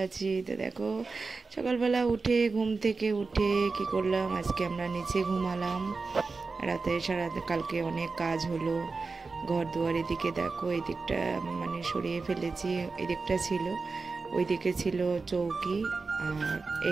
আছি। তো দেখো, সকালবেলা উঠে ঘুম থেকে উঠে কি করলাম, আজকে আমরা নিচে ঘুমালাম। রাতে সারা কালকে অনেক কাজ হলো, ঘর দুয়ার। এদিকে দেখো, এই দিকটা মানে সরিয়ে ফেলেছি। এই দিকটা ছিল, ওই দিকে ছিল চৌকি, আর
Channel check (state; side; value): quieter; left; 4.2 dB